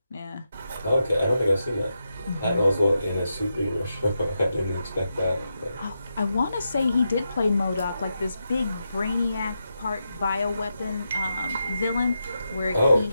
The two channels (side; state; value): both; inverted; correlation -0.86